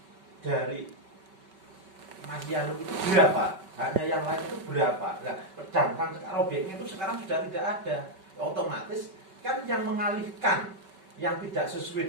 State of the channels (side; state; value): left; late; 5.2 ms